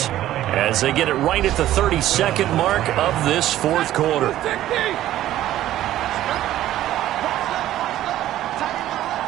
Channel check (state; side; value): quieter; left; 13.4 dB